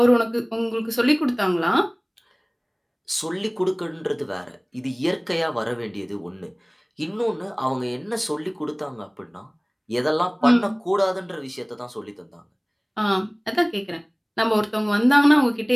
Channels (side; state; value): both; identical; correlation 1.00